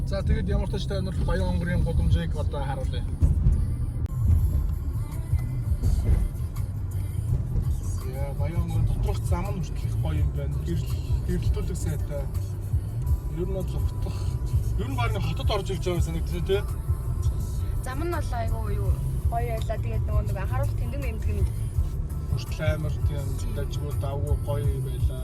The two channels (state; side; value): identical; both; correlation 1.00